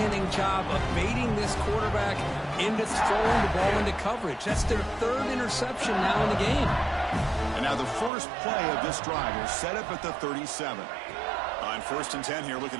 job of baiting this quarterback into throwing the ball into coverage. That's their 3rd interception now in the game. And now the first play of this drive will set up at the 37. On 1st and 10 here, looking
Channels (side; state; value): left; drops out; at 8.1 s